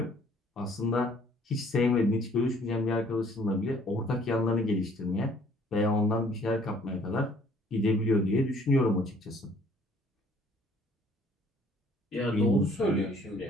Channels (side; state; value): both; normal; correlation 0.59